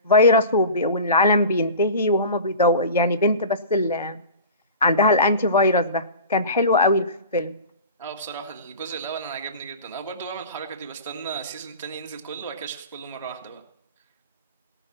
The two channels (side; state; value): both; inverted; correlation -0.36